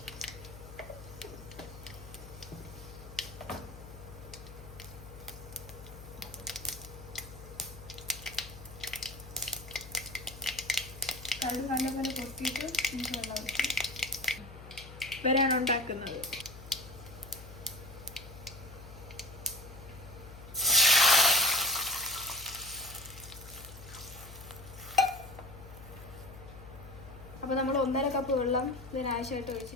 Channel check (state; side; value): noise; left; hum, 15 dB below the sound